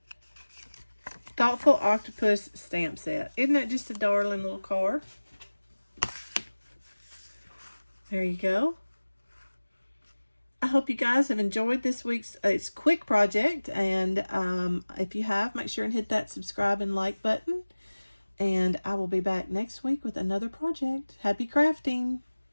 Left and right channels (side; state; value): both; inverted; correlation -1.00